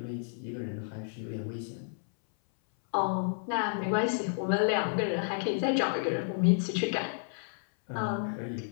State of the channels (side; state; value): right; silent; 57 dB below the other